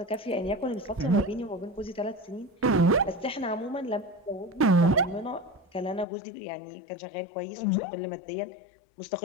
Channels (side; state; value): right; drops out; at 6.1 s